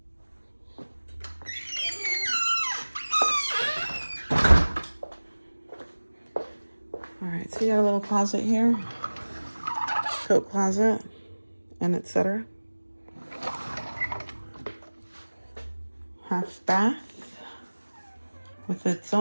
All right, so you got a little closet here, coat closet, and etc. Half bath with its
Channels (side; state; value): both; inverted; correlation -1.00